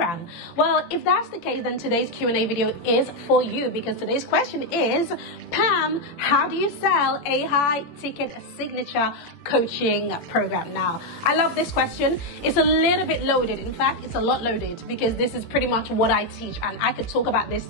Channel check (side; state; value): right; late; 17 ms